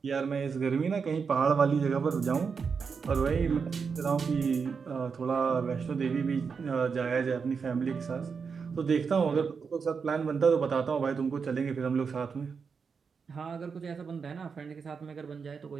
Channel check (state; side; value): quieter; left; 5.7 dB